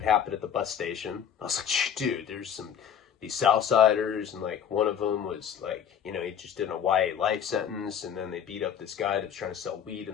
happened at the bus station. I was like, dude, there's these Southsiders, and like one of them was like, you know, he just did a YA life sentence, and then they beat up this guy that was trying to sell weed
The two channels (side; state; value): right; quieter; 8.5 dB